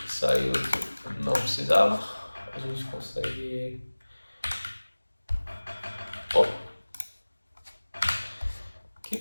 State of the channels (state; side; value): inverted; both; correlation -1.00